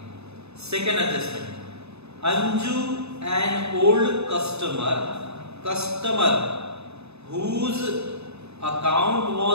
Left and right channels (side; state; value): left; late; 0.80 ms